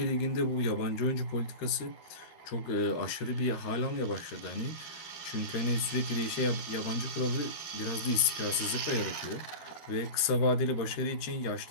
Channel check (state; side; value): late; right; 13 ms